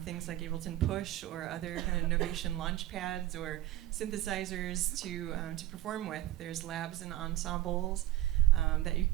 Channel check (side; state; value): left; quieter; 15.2 dB